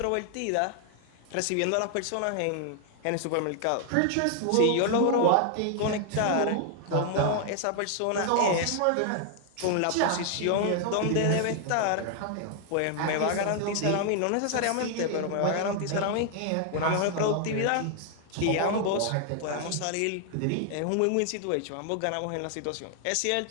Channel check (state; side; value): different; both; correlation 0.00